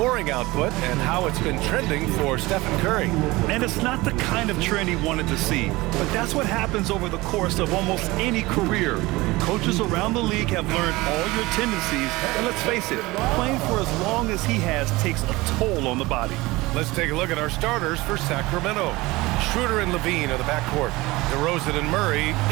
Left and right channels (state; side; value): quieter; left; 20.9 dB